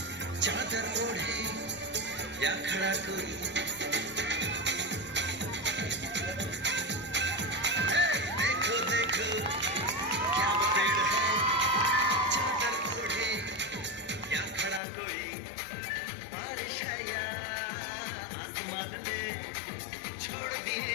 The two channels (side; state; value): right; drops out; at 14.8 s